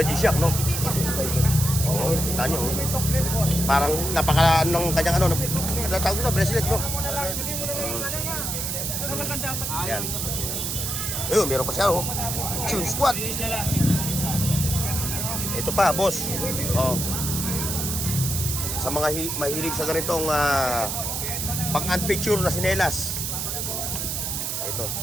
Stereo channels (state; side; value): noise; right; hiss, 2 dB below the sound